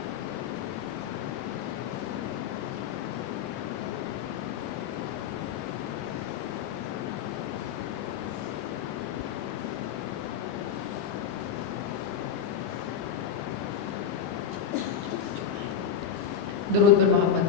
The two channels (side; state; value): right; quieter; 7.9 dB